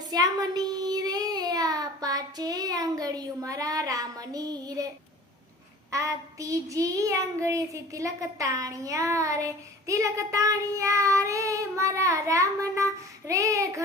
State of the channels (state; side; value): normal; both; correlation 0.43